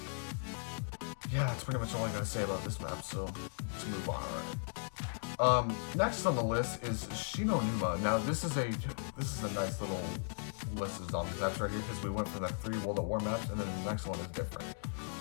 yeah, that's pretty much all I gotta say about this map. So let's move on. All right. Next on the list is Numa. Now this is a nice little list of zombies maps right here, because we went from the 3 World at War maps, and then the next one is different.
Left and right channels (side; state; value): right; silent; digital silence